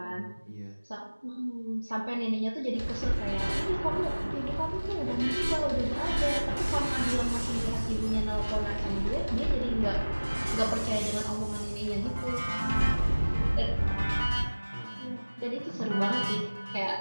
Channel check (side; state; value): both; inverted; correlation -1.00